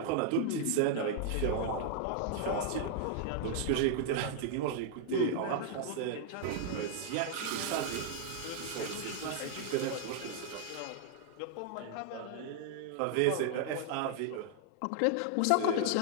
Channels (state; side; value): different; both; correlation -0.01